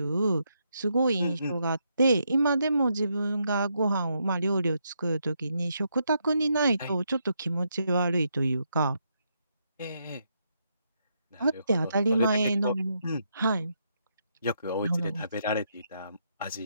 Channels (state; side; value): inverted; both; correlation -0.79